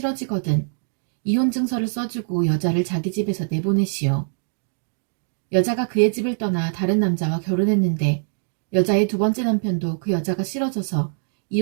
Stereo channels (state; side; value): silent; left; digital silence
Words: 이혼 증서를 써주고 여자를 자기 집에서 내보내시오. 여자가 그의 집을 떠나 다른 남자와 결혼했는데 여자의 두 번째 남편도 그 여자가 싫어져서